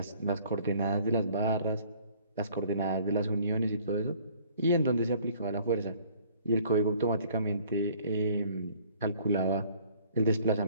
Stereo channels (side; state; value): both; inverted; correlation -0.56